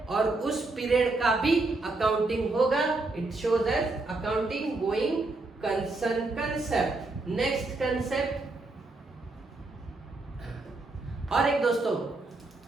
और उस पीरियड का भी अकाउंटिंग होगा। It shows as accounting going concern concept. Next concept और एक दोस्तों,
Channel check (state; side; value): quieter; left; 3.2 dB